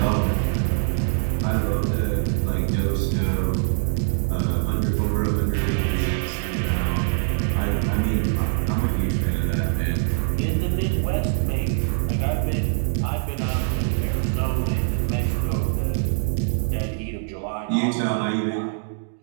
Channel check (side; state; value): left; silent; digital silence